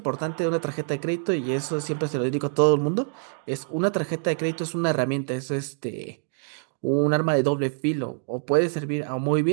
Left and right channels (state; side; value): silent; left; digital silence